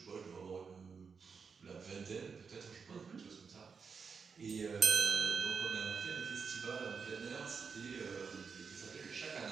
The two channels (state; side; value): quieter; left; 5.6 dB